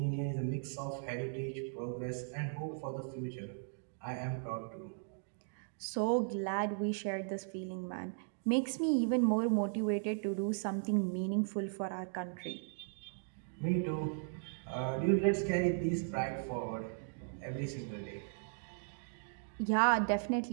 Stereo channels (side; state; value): left; silent; digital silence